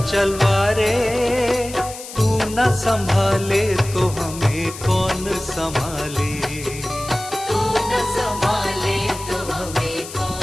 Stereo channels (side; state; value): left; noise; hiss, 13 dB below the sound